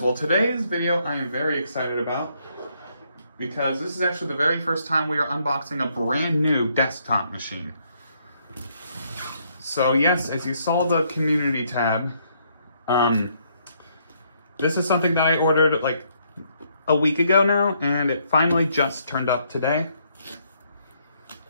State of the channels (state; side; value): inverted; both; correlation -0.71